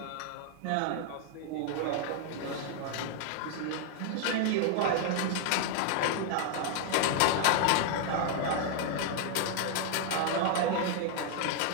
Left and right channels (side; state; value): both; different; correlation 0.00